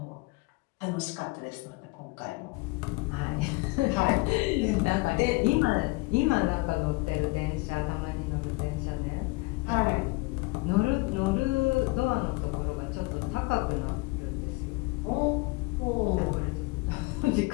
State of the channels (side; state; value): right; quieter; 24.5 dB